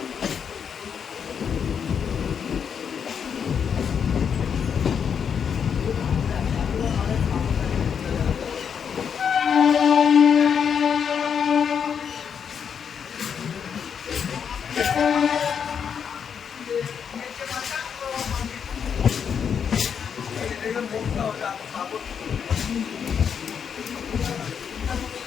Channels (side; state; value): right; quieter; 7.3 dB